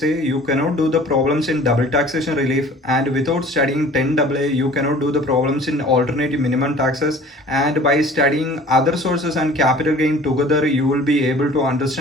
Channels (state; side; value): normal; both; correlation 0.47